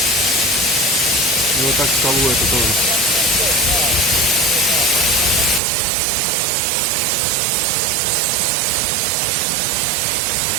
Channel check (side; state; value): left; drops out; at 5.6 s